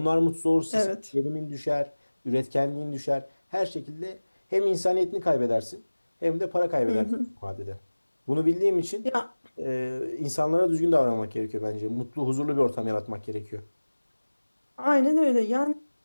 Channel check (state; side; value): inverted; both; correlation -1.00